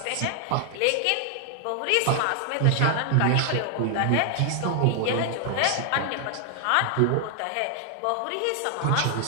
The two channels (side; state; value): both; different; correlation 0.00